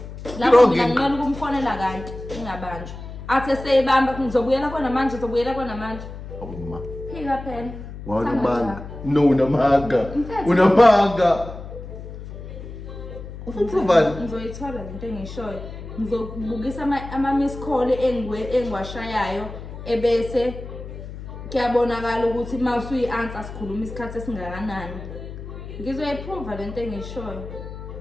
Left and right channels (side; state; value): left; noise; hum, 11 dB below the sound